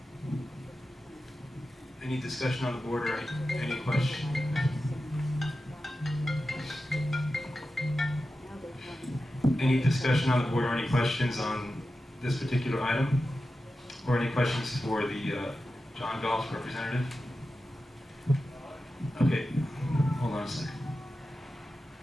Any discussion on the board or any question? Any discussion on the board or any questions on this particular item? Or any questions for the John Galt representative? Okay, hold on a second.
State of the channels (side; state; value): both; normal; correlation 0.92